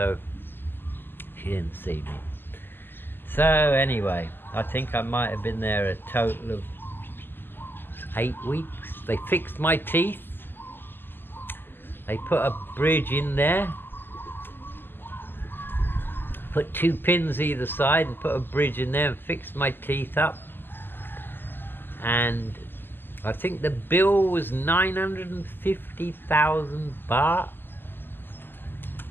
she didn't see me. So anyway, I think I might have been there a total of 8 weeks. They fixed my teeth. They put a bridge in there, put 2 pins either side and put a bridge in there and fixed my teeth up. And I think the bill was 950,000 baht.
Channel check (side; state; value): right; late; 0.10 ms